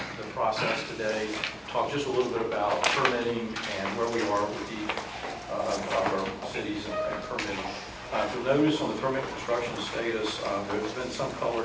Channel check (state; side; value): identical; both; correlation 1.00